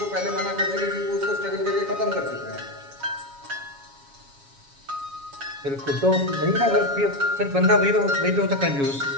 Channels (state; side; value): late; left; 7.2 ms